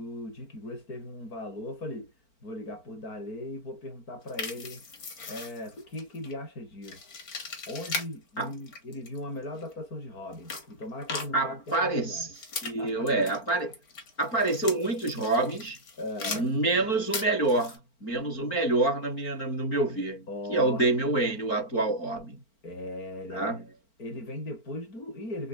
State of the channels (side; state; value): right; late; 4.4 ms